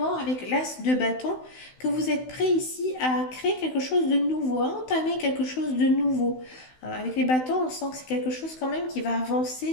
avec l'as de bâton que vous êtes prêt ici à créer quelque chose de nouveau, à entamer quelque chose de nouveau. Avec les bâtons, on sent que c'est quelque chose quand même qui va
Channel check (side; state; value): right; late; 16 ms